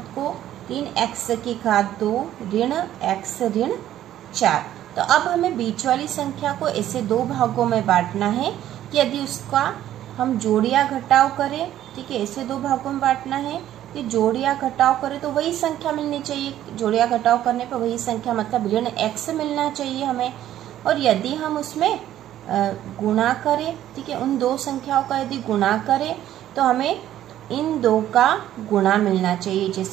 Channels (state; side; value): quieter; left; 12.3 dB